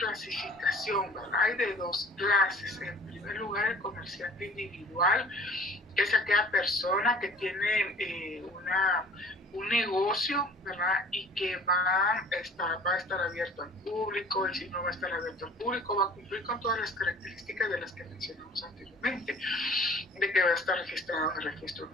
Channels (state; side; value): normal; both; correlation 0.49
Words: ¿verdad? Hay de dos clases. En primer lugar, el comerciante individual, que es aquella persona que tiene un negocio, ¿verdad? Y que va a estar abierto al público, y si no va a estar abierto al público, va a cumplir con todas las características de las que mencionamos anteriormente, de que va a estar registrado en el registro